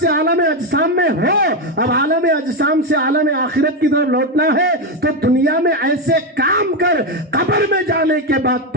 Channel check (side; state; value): both; normal; correlation 0.09